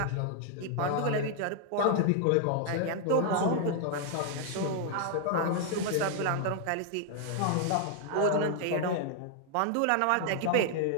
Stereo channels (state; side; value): different; both; correlation 0.00